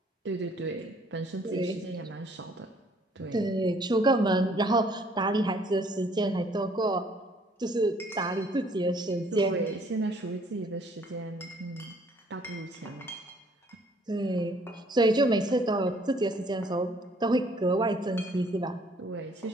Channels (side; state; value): both; normal; correlation 0.61